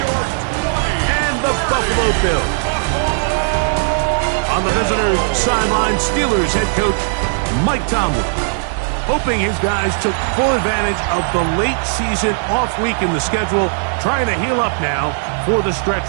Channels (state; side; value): silent; left; digital silence